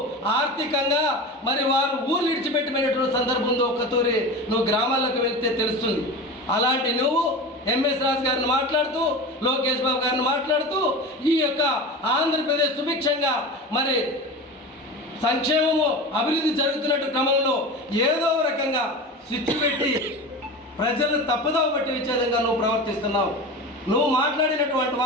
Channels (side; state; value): both; normal; correlation 0.30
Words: ఆర్థికంగా మరి వారు ఊళ్ళు విడిచిపెట్టిపోయినటువంటి సందర్భం ఉందో ఒక్కతూరి నువ్వు గ్రామాలకు వెళ్తే తెలుస్తుంది. అలాంటి నువ్వు ఎంఎస్ రాజు గారిని మాట్లాడుతూ లోకేష్ బాబు గారిని మాట్లాడుతూ ఈ యొక్క ఆంధ్రప్రదేశ్ సుభిక్షంగా మరి సంక్షేమము అభివృద్ధి జరుగుతున్నట్టు క్రమంలో ఏదో రకంగా స్విచ్ పెట్టి ప్రజలను తప్పుదోవ పట్టి వచ్చే విధంగా నువ్వు ప్రవర్తిస్తున్నావు. నువ్వు మాట్లాడినటువంటి